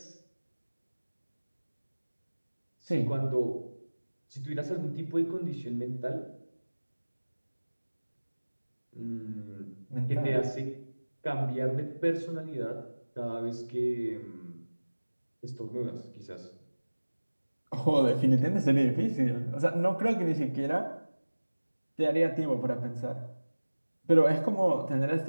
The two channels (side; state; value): both; inverted; correlation -1.00